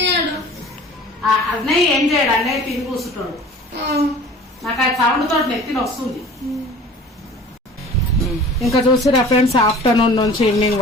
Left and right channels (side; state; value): both; normal; correlation 0.44